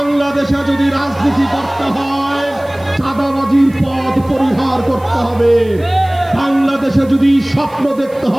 যদি রাজনীতি করতে হয় চাঁদাবাজির পথ পরিহার করতে হবে। বাংলাদেশে যদি স্বপ্ন দেখতে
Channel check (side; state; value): right; noise; hiss, 27 dB below the sound